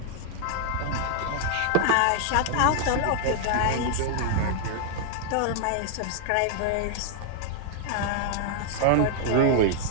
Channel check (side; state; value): both; different; correlation 0.00